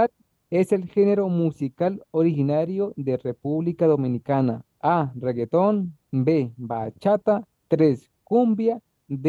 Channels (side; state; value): both; identical; correlation 1.00